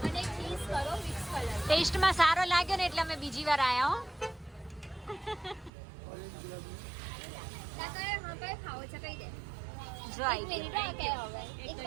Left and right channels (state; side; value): drops out; left; at 5.7 s